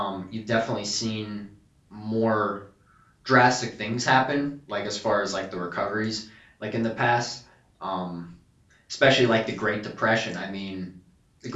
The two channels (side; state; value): both; identical; correlation 1.00